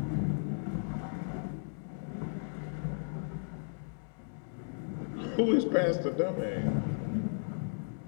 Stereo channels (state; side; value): silent; right; digital silence